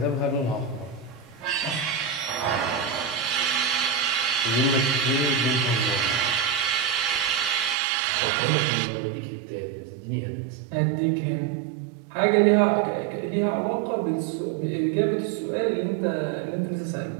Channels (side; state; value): left; drops out; at 7.8 s